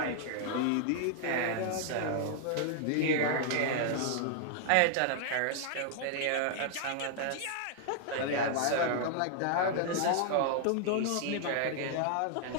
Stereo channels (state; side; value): different; both; correlation 0.00